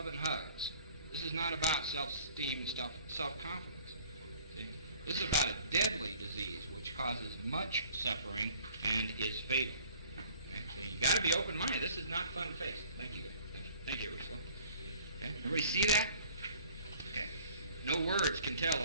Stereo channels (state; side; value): inverted; both; correlation -0.51